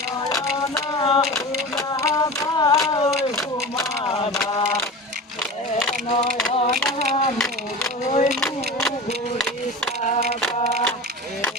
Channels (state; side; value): normal; both; correlation 0.31